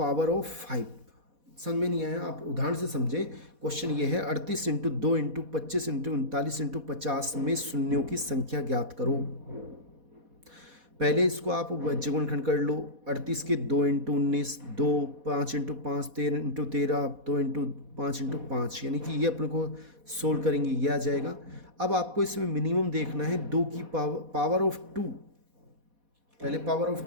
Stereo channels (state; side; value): late; left; 4.1 ms